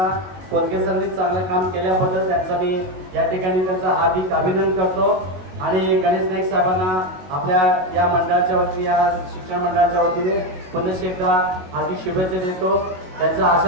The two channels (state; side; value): late; left; 22 ms